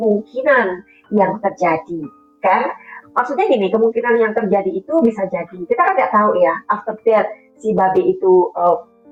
yang terjadi, kan? Maksudnya gini, kemungkinan yang terjadi itu bisa jadi, kita kan nggak tahu ya, after that si babi itu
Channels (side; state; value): both; identical; correlation 1.00